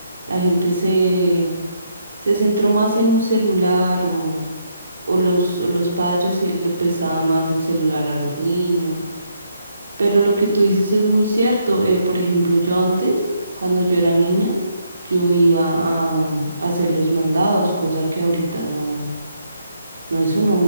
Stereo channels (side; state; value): both; inverted; correlation -0.74